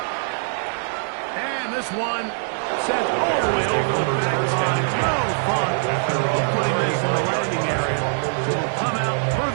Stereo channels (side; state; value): left; silent; digital silence